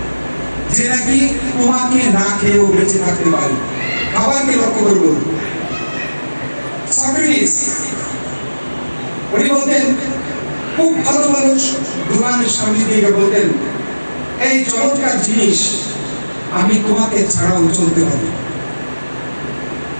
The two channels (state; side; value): inverted; both; correlation -1.00